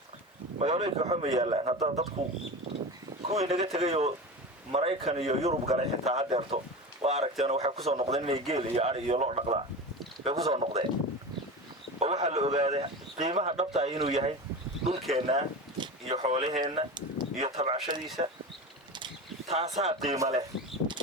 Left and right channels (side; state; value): both; normal; correlation 0.27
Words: waxba ma yaalaan hadda dadku kuwii naga tegay oo Maraykan iyo Yurub galay xitaa hadeerto waa aragteen waxay ku soo noqdeen inay geel iyo ari iyo loo dhaqdaan bay ku soo noqdeen oo waxa la ogaaday qiimaha dhabta ah inuu yahay dhulkeena iyo xoolaheena iyo tabcashadiisa taasaa qiimo leh